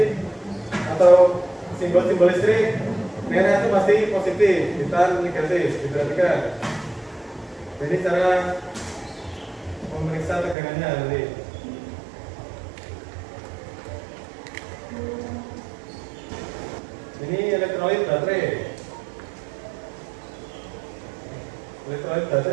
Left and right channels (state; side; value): drops out; left; at 10.6 s